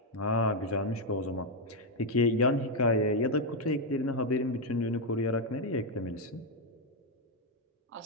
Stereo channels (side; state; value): both; normal; correlation 0.02